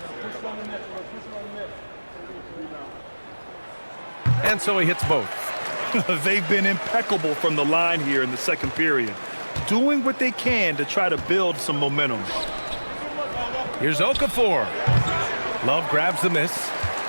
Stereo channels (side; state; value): both; inverted; correlation -1.00